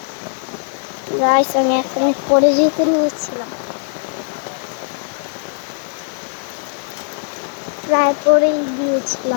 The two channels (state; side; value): silent; right; digital silence